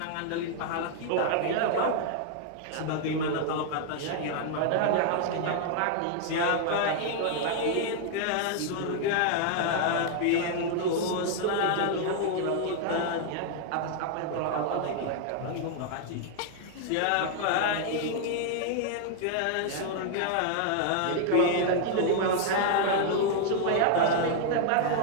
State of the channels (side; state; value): both; different; correlation 0.00